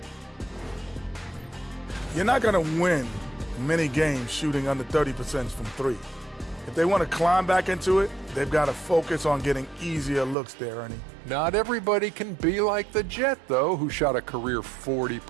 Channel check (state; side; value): drops out; left; at 10.4 s